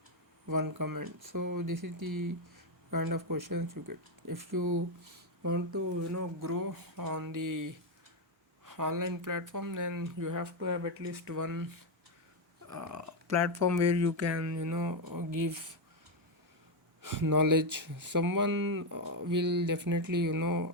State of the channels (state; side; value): normal; both; correlation 0.05